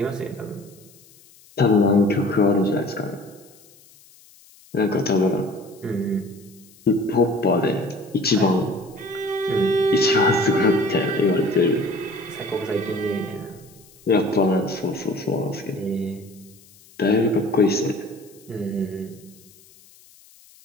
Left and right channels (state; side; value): noise; left; hiss, 26 dB below the sound